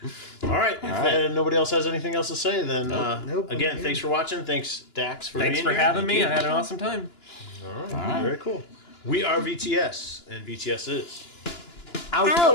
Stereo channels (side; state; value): right; late; 2.9 ms